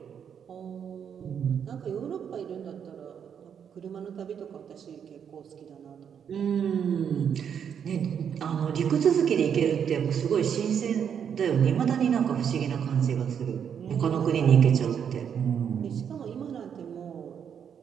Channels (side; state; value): left; quieter; 7.9 dB